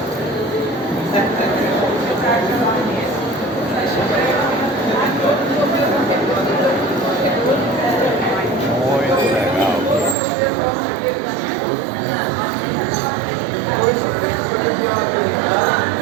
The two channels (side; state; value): left; drops out; at 10.2 s